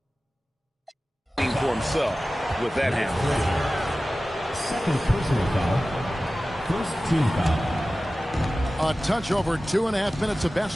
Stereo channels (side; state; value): both; normal; correlation 0.96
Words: For himself with that handle. Second personal foul. First team foul. A touch over 2.5 minutes of